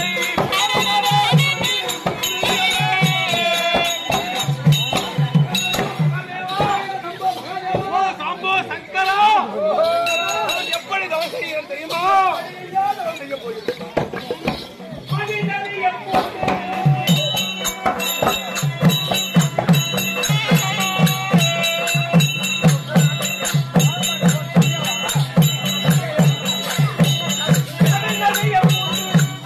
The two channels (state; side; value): identical; both; correlation 1.00